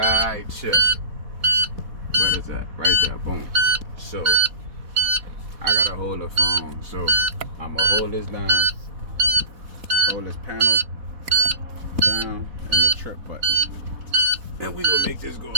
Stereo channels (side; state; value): left; late; 4.1 ms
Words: here. What is that? Right there. Boom. So, I gotta hold the phone. So, I'm gonna hold this down. Hold this panel down and the trip button. Then we gonna make this go